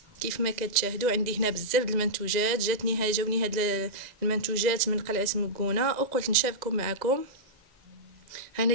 كيف ما كتشاهدوا عندي هنا بزاف د المنتوجات، جاوني هاد المنتوجات من قلعه مكونه وقلت نشاركهم معكم. انا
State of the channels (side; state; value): left; late; 1.9 ms